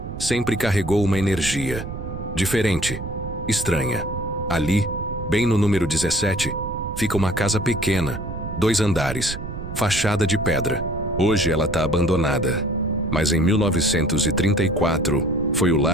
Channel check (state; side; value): noise; right; rumble, 8 dB below the sound